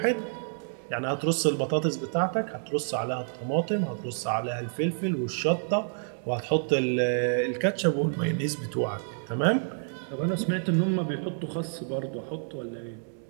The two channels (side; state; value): left; silent; digital silence